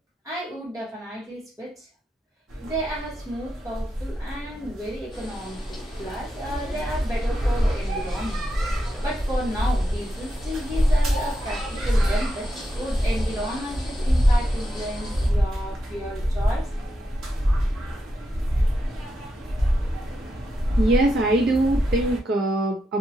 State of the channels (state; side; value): normal; both; correlation 0.85